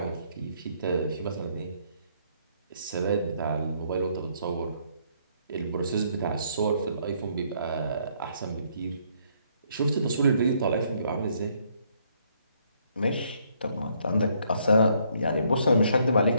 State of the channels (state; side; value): inverted; both; correlation -0.69